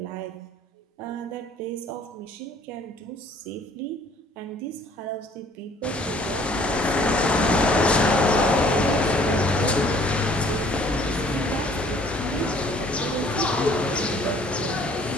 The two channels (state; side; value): normal; both; correlation 0.57